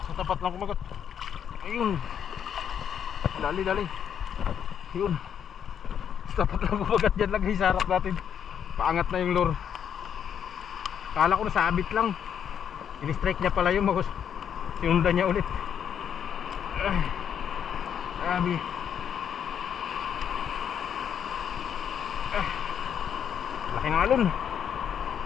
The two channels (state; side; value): quieter; right; 8.5 dB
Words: Sa tapat lang kumagat. Ayun. Dali. Ayun. Sa tapat lang kumagat dyan lang guys, sa harap natin. Paangat na yung lure. Kala ko nasabit lang. In-strike niya pala yung magos. Sinundan niya ulit. Grabe. Laking alon.